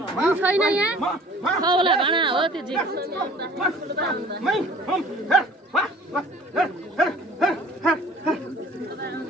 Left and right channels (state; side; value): normal; both; correlation 0.49